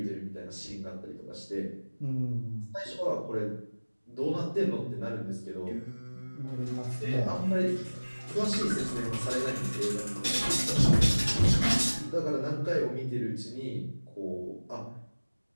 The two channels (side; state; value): both; inverted; correlation -1.00